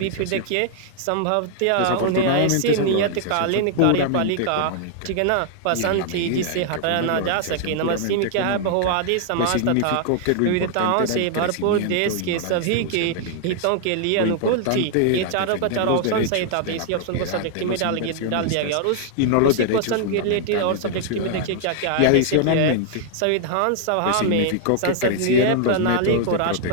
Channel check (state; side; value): different; both; correlation 0.00